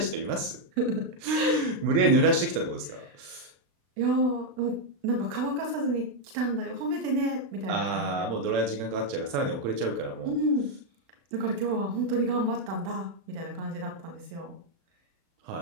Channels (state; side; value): late; left; 35 ms